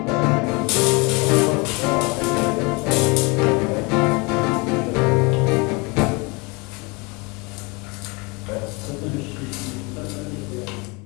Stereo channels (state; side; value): quieter; right; 28.0 dB